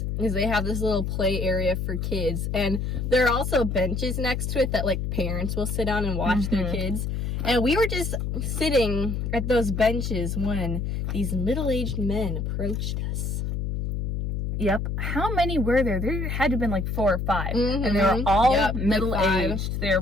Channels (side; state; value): left; noise; hum, 2 dB below the sound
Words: is they have this little play area for kids, and there are also benches next to it that like parents will sit on and watch their kids. And we were just sitting at those benches when these middle-aged men approached us. Yep. How many were there? There had to have been like 4 or 5. And they were all middle-aged. They were